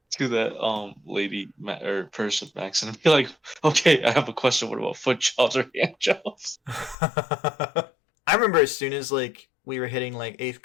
that lady or person, Max, and be like, okay, I have a question. What about foot jobs or hand jobs? I remember as soon as like we were hitting like 8th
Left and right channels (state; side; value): drops out; right; at 7.0 s